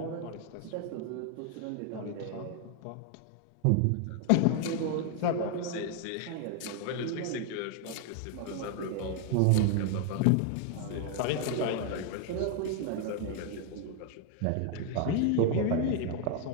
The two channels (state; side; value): different; both; correlation 0.00